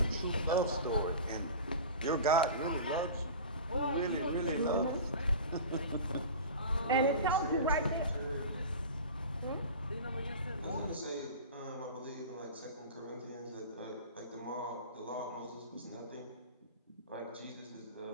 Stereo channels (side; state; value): both; inverted; correlation -0.35